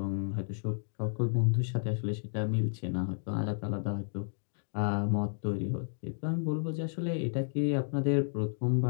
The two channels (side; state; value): right; silent; digital silence